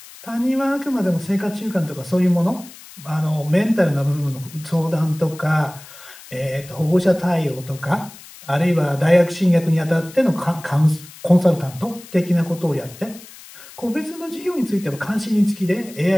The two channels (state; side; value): noise; left; hiss, 19 dB below the sound